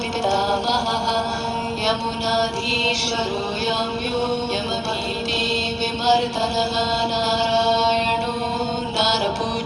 यमुनाधीश्वरो याम्यो यमभीति विमर्दनः नारायणो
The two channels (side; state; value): both; identical; correlation 1.00